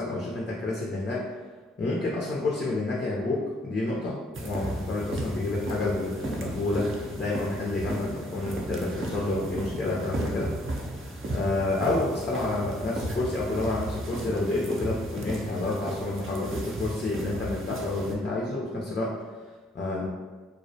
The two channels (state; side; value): normal; both; correlation 0.65